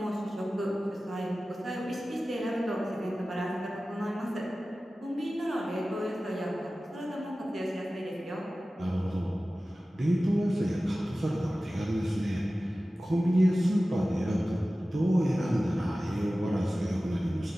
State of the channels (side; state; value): both; normal; correlation 0.96